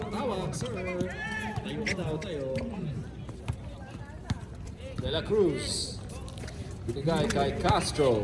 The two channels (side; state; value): both; identical; correlation 1.00